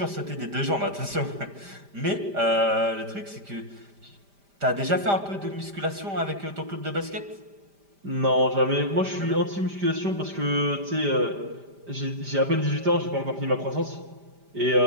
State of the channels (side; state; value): left; late; 5.0 ms